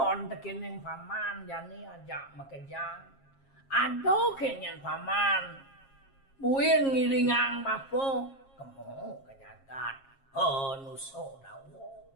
tekining paman jani ajak makejang. Ado kenyan paman buin ngiringang bapo kemo ke jagat nusodawo.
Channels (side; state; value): right; late; 7.4 ms